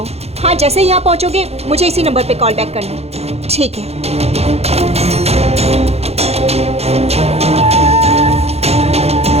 हाँ, जैसे ही यहाँ पहुँचोगे मुझे इसी नंबर पे कॉल बैक करना। ठीक है।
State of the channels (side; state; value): left; late; 0.30 ms